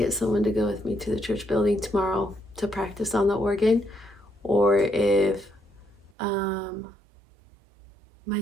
someone to go with me to the church building tomorrow to practice on the organ, or if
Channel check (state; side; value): drops out; left; at 6.1 s